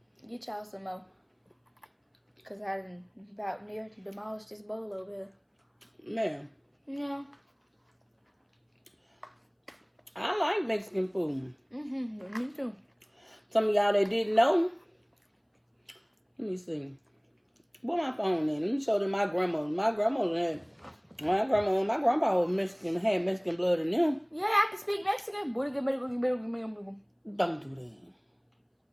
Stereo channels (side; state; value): both; identical; correlation 1.00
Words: Get y'all some more. Because I done about near demolished this bowl over here. Man, Yeah. I like Mexican food. Me too. Some of y'all that didn't know. Let me see. Where my phone in? Let me show them my grandma. My grandpa was Mexican, had Mexican blood in them. Yeah, I can speak Mexican. Don't do that.